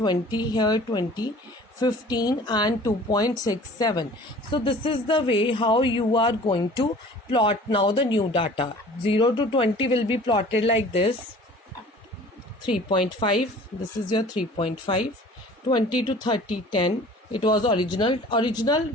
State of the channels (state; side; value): normal; both; correlation 0.47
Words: here 20, 15 and 2.67. So this is the way how you are going to plot now the new data. 0 to 20 will be plotted like this. 3.5, this is your 3.5. 20 to 30, 10. It was original